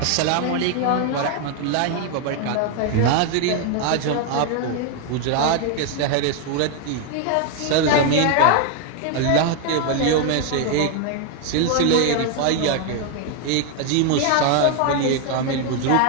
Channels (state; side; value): different; both; correlation 0.01